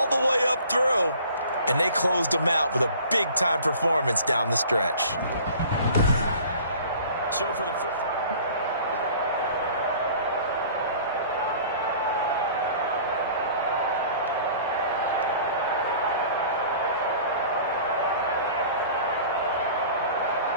the way up through. And they closed them out with a big-time performance down the stretch. So for the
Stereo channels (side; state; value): both; inverted; correlation -0.47